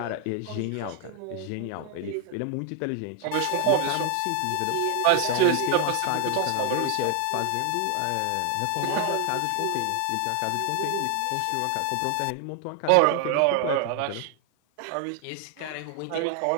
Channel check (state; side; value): different; both; correlation 0.00